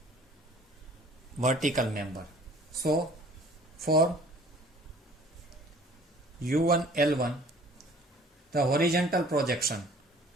vertical member. So for U1 L1, the horizontal projection,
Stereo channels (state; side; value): normal; both; correlation 0.52